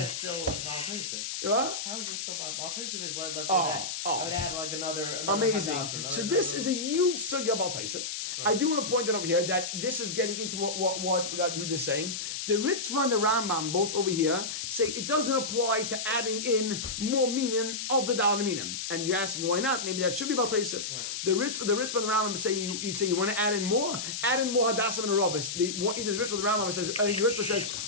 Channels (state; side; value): noise; left; hiss, 4 dB below the sound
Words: still Baal Toisef? What? How is it still Baal Toisef? Is let's say that. oh. I would add like another Amazing. Hadassah, So this is a huge sugya about Taisef. I do want to point out over here that this is getting into what Yud is saying. The Ritva and the Rambam, both over here, say it doesn't apply to adding in more meaning of the Dalad Minim. And you're asking why not? Maybe that should be about Taisef. Right. The Ritva and the Rambam say you want to add in more Hadassim and Arabis. Either the Ritva or the Rambam says, I think the Ritva says,